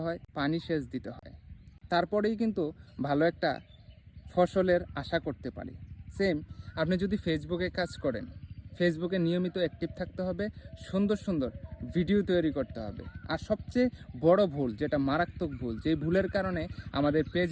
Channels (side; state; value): both; identical; correlation 1.00